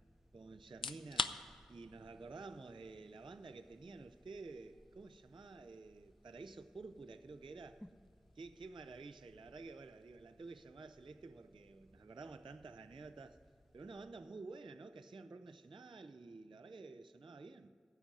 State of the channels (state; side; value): normal; both; correlation 0.72